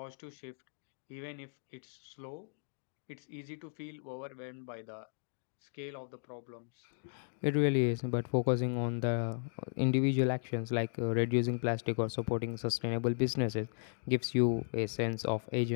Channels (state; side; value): silent; right; digital silence